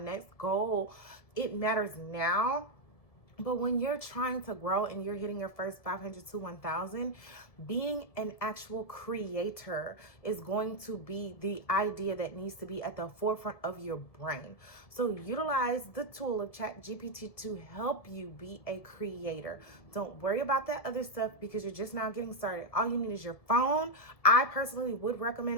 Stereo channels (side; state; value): right; late; 1.7 ms